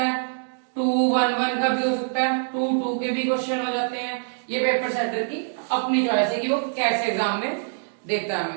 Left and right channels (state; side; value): silent; left; digital silence